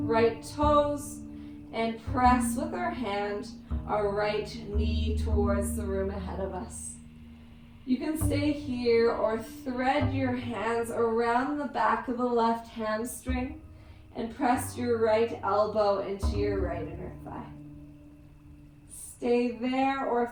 toes and press with our hand our right knee towards the room ahead of us. You can stay here or thread your hands around the back of the left hamstring and press your right elbow into your right inner thigh. Stay there, or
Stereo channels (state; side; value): identical; both; correlation 1.00